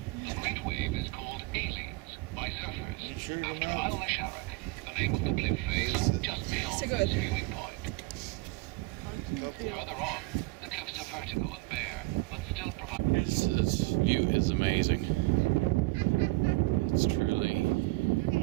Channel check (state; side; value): quieter; left; 22.7 dB